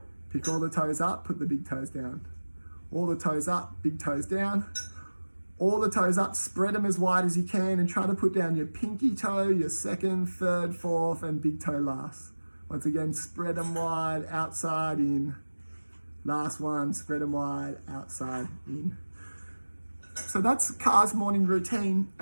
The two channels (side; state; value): both; inverted; correlation -1.00